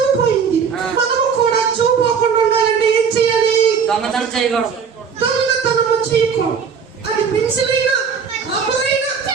పోయింది. మనము కూడా చెవు పోకుండా ఉండాలంటే ఏం చేయాలి? దొంగతనం చేయకూడదు. దొంగతనము చేయకూడదు. అది పెన్సిల్ అయినా, రబ్బర్ అయినా,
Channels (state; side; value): quieter; left; 6.4 dB